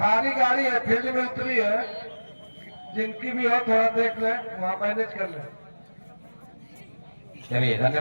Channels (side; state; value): both; inverted; correlation -1.00